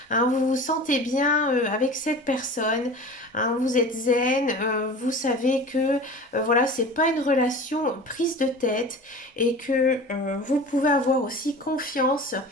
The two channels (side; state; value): both; normal; correlation 0.37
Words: hein. Vous vous sentez bien avec cette personne, hein. Vous êtes zen, vous savez que voilà, c'est pas une relation prise de tête et que vous pouvez avoir aussi confiance